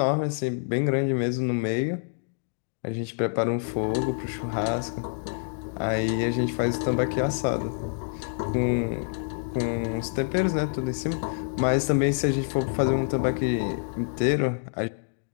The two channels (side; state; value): right; silent; digital silence